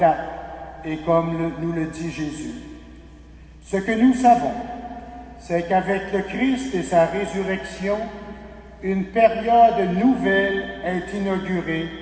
et comme nous le dit Jésus. Ce que nous savons, c'est qu'avec le Christ et sa résurrection, une période nouvelle est inaugurée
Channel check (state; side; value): identical; both; correlation 1.00